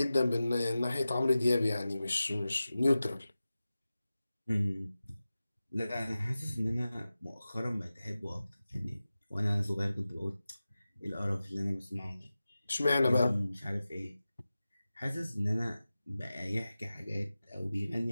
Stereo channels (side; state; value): both; inverted; correlation -0.95